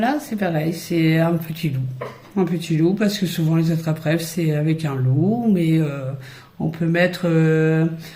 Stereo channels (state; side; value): identical; both; correlation 1.00